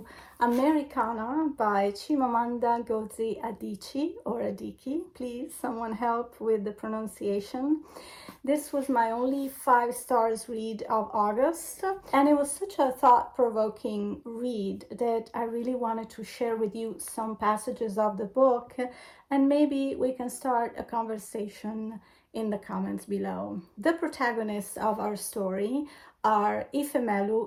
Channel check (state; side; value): identical; both; correlation 1.00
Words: Americanah by Chimamanda Ngozi Adichie or Adichie. Please, someone help with the pronunciation. This was my only 5 stars read of August, and it was such a thought-provoking read that I really wanted to share with you some passages of the book, and maybe we can start a conversation in the comments below. The protagonists of our story are